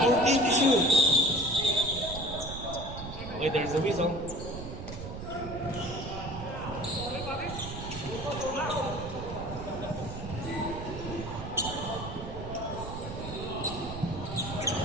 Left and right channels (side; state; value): right; noise; rumble, 8 dB below the sound